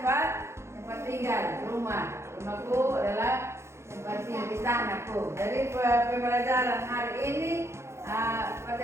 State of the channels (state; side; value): late; left; 0.13 ms